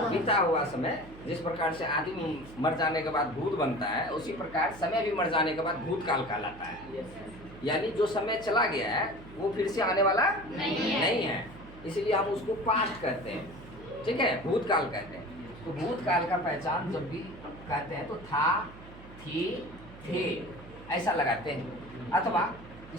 हुआ समय। जिस प्रकार से आदमी मर जाने के बाद भूत बनता है, उसी प्रकार समय भी मर जाने के बाद भूतकाल कहलाता है। यानी जो समय चला गया है वो फिर से आने वाला नहीं है, इसलिए हम उसको पास्ट कहते हैं, ठीक है, भूतकाल कहते हैं। तो भूतकाल का पहचान जब भी कहते हैं तो था, थी, थे ऐसा लगाते हैं, अथवा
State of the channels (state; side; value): noise; right; hum, 18 dB below the sound